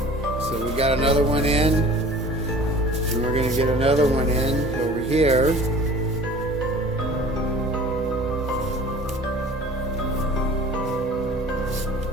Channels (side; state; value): both; normal; correlation 0.45